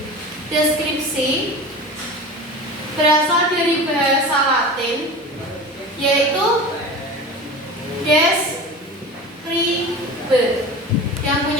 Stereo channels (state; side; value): normal; both; correlation 0.33